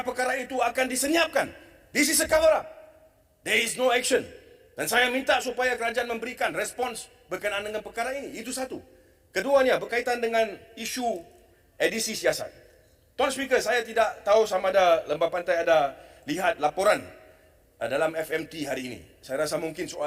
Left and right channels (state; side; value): identical; both; correlation 1.00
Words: itu akan disenyapkan. This is a cover-up. There is no action. Dan saya minta supaya kerajaan memberikan respons berkenaan dengan perkara ini. Itu satu. Keduanya berkaitan dengan isu edisi siasat. Tuan Speaker, saya tidak tahu sama ada Lembah Pantai ada lihat laporan dalam FMT hari ini. Saya rasa mungkin